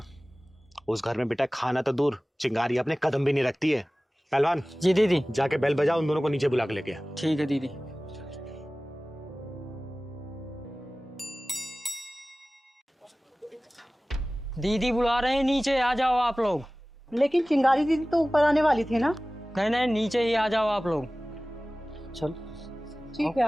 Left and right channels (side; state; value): both; normal; correlation 0.97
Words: उस घर में बेटा खाना तो दूर, चिंगारी अपने कदम भी नहीं रखती है। पहलवान जी दीदी, जाके बेल बजाओ, उन दोनों को नीचे बुला के लेके आ। ठीक है दीदी। दीदी बुला रहे हैं, नीचे आ जाओ आप लोग। लेकिन चिंगारी दीदी तो ऊपर आने वाली थी ना। नहीं नहीं, नीचे ही आ जाओ आप लोग। चल ठीक है,